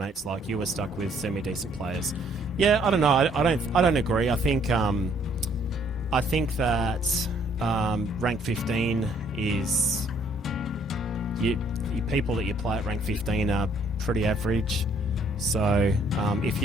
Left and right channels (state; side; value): normal; both; correlation 0.64